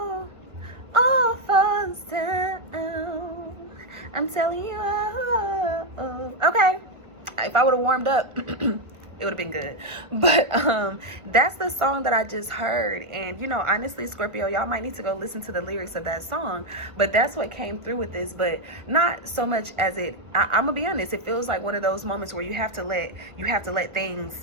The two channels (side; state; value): left; late; 1.5 ms